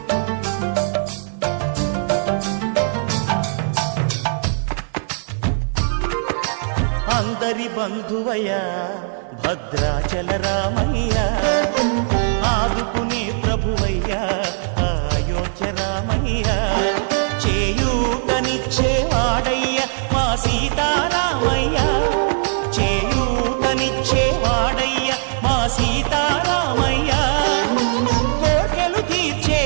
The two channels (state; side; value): silent; left; 58 dB below the other